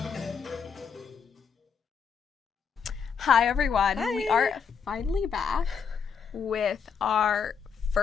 Hi everyone. Hi. We are finally back with our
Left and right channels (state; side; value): quieter; right; 6.4 dB